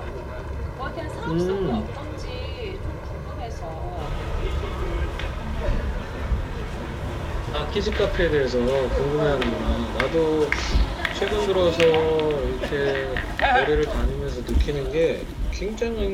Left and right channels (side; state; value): both; identical; correlation 1.00